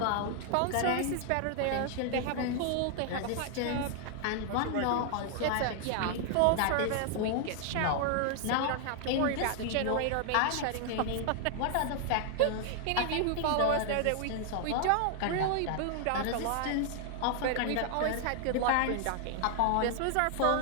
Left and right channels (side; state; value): both; different; correlation 0.00